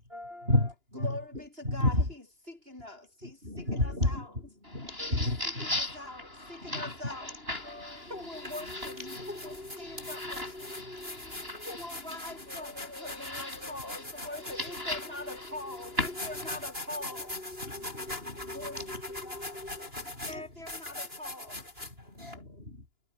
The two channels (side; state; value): left; late; 2.9 ms